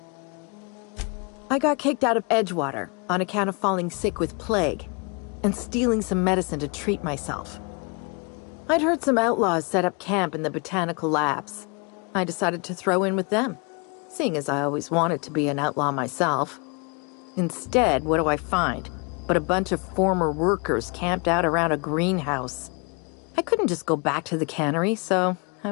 I got kicked out of Edgewater on account of falling sick with plague and stealing some medicine to treat myself. I'd heard some outlaws set up camp in the botanical labs. I decided to throw in with them, seeing as I always wanted to be an outlaw myself. Instead, what do I find? But a bunch of former workers camped out around a greenhouse. I couldn't just go back to the cannery, so I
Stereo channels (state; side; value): quieter; right; 32.9 dB